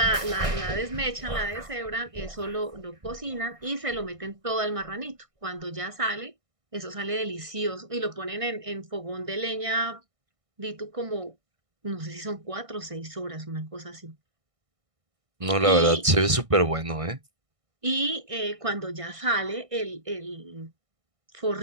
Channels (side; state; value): left; late; 1.6 ms